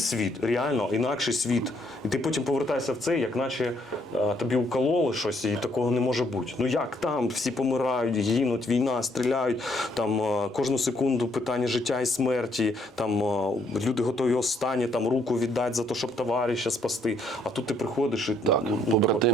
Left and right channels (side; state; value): both; normal; correlation 0.69